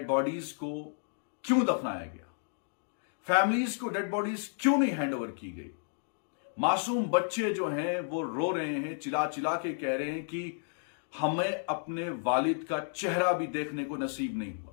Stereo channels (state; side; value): silent; right; digital silence